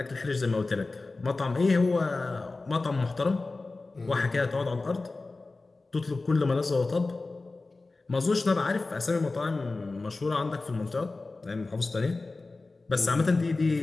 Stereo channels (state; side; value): quieter; right; 3.5 dB